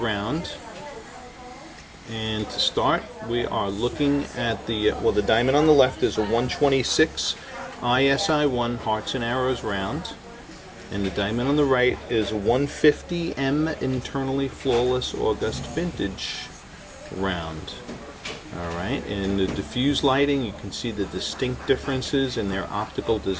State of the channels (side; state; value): both; identical; correlation 1.00